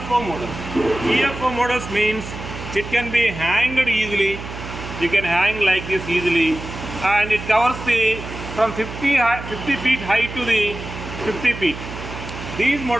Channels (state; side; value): noise; right; hum, 10 dB below the sound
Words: models. UFO models means it can be hanged easily. You can hang like this easily, and it covers the from 50 feet high to the 50 feet. These